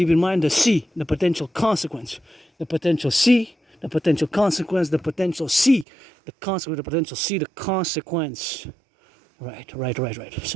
in mind the C, the potential consequence, the potential C, the potential consequence, the potential C, the consequence, the potential C, the consequence. Right.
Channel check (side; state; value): left; drops out; at 5.9 s